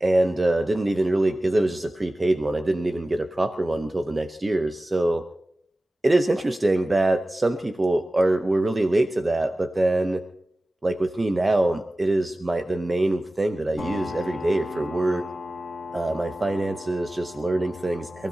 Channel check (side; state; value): both; normal; correlation 0.96